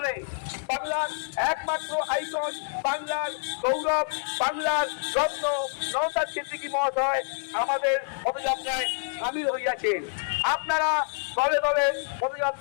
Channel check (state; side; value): silent; right; 60 dB below the other